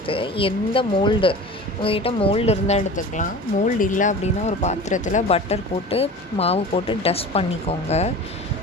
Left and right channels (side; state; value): both; normal; correlation 0.36